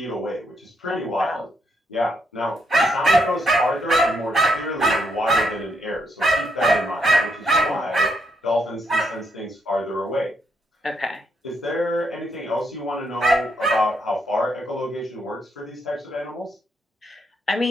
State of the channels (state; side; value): normal; both; correlation 0.76